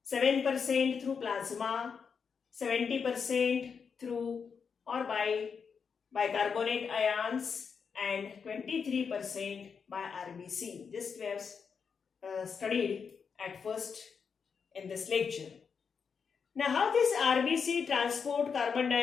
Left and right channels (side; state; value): right; quieter; 6.1 dB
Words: 7% through plasma, 70% through or by bicarbonate ions, and 23% by RBC. This we have studied at first in this lecture. Now, how this RBC transport carbon